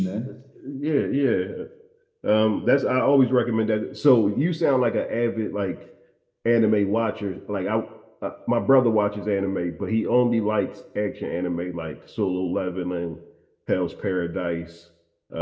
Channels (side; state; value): both; identical; correlation 1.00